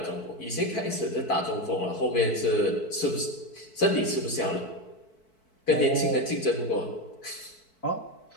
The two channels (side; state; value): right; late; 4.6 ms